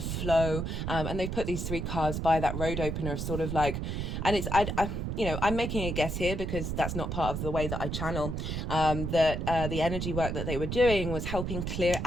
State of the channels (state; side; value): noise; right; rumble, 3 dB below the sound